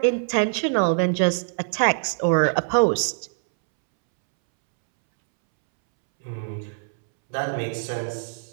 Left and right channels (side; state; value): left; silent; 63 dB below the other